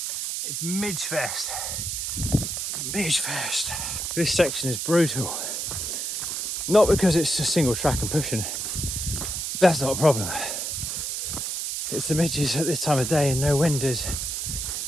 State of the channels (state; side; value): noise; right; hiss, 2 dB below the sound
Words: It's Midge Fest. Midge Fest. This section is brutal. Not because it's just single track and pushing. That's not a problem. It's the midges at this time of day and no wind is.